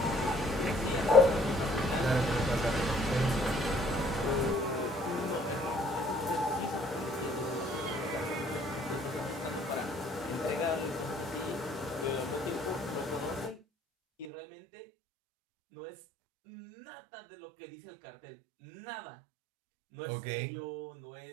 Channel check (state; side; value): drops out; left; at 14.2 s